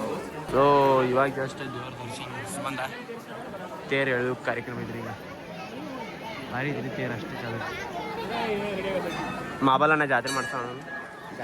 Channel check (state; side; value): identical; both; correlation 1.00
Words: ಸೊ ಇವಾಗ ಜಸ್ಟ್ ದೇವ್ರ ದರ್ಶನ ಬಂದ ತೇರು ಎಳೆದು ಕಾರ್ಯಕ್ರಮ ಇದ್ರಿ ಈಗ ಭಾರಿ ಇದ್ರಿ ತೇರು ಅಷ್ಟೇ ಚಲೋ ಮಾಬಲನ್ನ ಜಾತ್ರೆ ಮಾಡ್ಸೋಣ